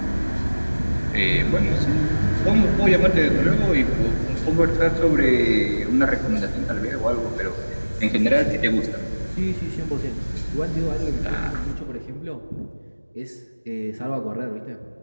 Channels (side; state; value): both; inverted; correlation -1.00